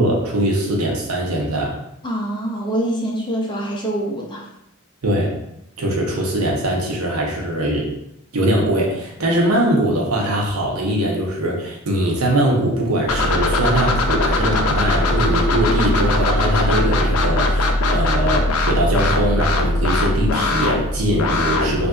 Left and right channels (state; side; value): normal; both; correlation 0.44